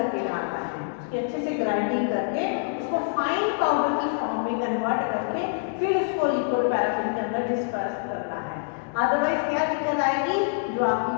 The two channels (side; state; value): right; silent; digital silence